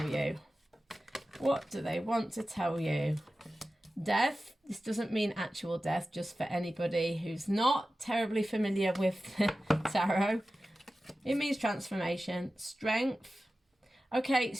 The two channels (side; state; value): both; normal; correlation 0.95